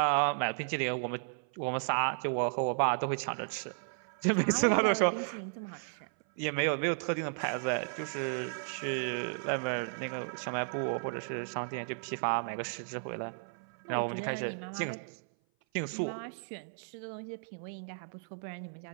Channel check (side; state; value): left; silent; 55 dB below the other